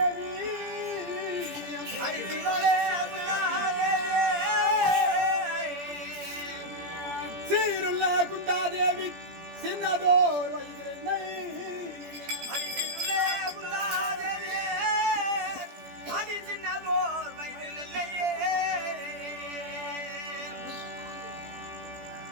சீருள்ள குந்தாதேவி சின்னதோர் வயதிலே,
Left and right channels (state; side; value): late; left; 17 ms